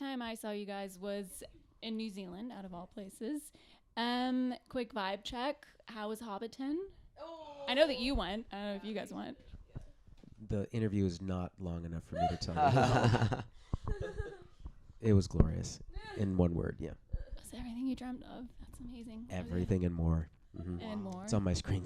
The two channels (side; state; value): both; identical; correlation 1.00